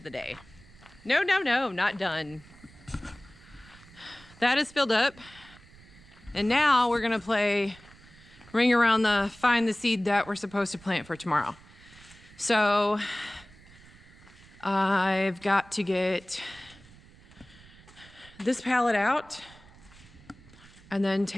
the day. No, not done. That is filled up. And now we're gonna play ring around the find the seed that we're supposed to plant for tomorrow. So I've got to get this pallet out and then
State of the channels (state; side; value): noise; right; rumble, 23 dB below the sound